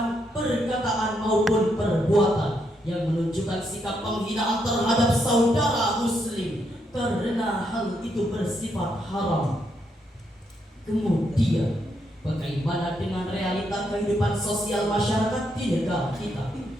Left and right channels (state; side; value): normal; both; correlation 0.78